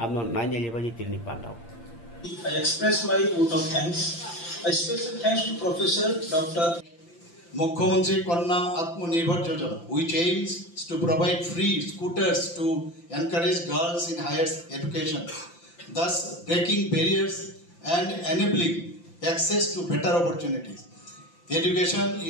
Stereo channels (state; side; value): late; right; 5.8 ms